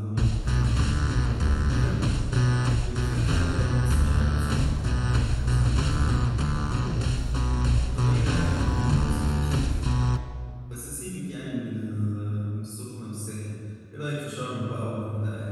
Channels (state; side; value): identical; both; correlation 1.00